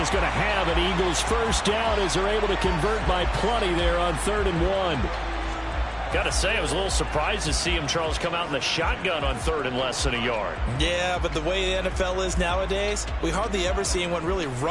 is going to have an Eagles first down as they're able to convert by plenty there on 3rd and 1. Got to say, I was a little surprised to see him, Charles, come out in the shotgun on 3rd and less than a yard. Yeah, but the way the NFL is nowadays, we hardly ever see anyone really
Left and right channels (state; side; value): identical; both; correlation 1.00